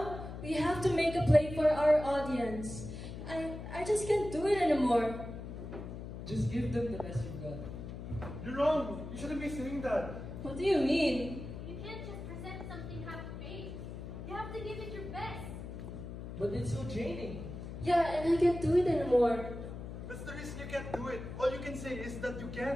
we have to make a play for our audience. I just can't do it anymore. Just give them the best you've got. You're wrong. You shouldn't be saying that. What do you mean? You can't just present something half-baked. You have to give it your best. But it's so draining. Yeah, and I can't do it anymore. That's the reason you can't do it. All you can say is that you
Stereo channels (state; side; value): noise; left; hum, 9 dB below the sound